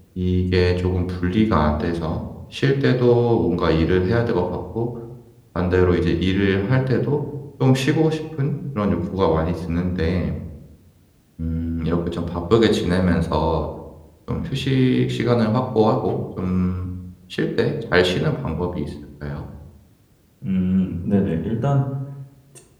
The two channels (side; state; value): both; identical; correlation 1.00